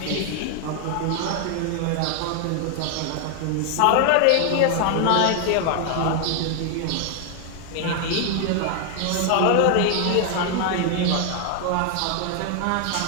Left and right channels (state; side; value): different; both; correlation 0.00